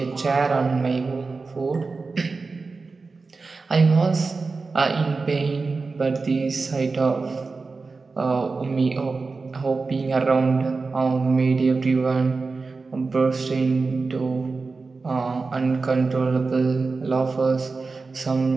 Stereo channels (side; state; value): left; quieter; 4.1 dB